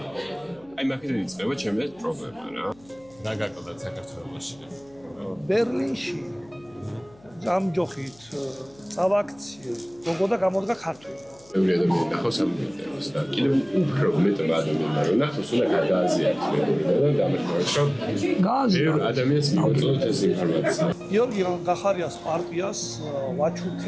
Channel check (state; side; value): noise; left; hum, 27 dB below the sound